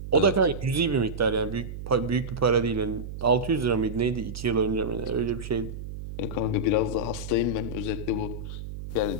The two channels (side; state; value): right; noise; hum, 9 dB below the sound